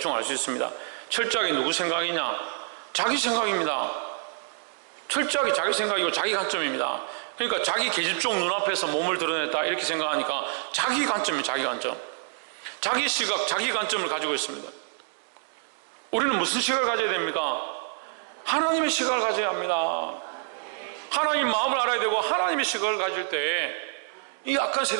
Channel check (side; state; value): left; silent; digital silence